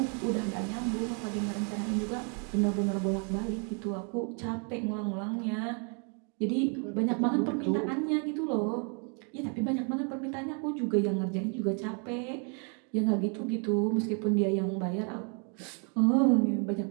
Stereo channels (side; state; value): left; quieter; 38.8 dB